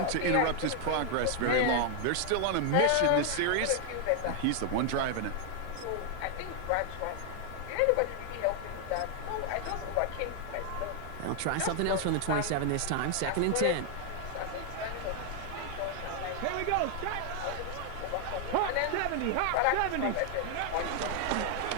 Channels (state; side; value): different; both; correlation 0.00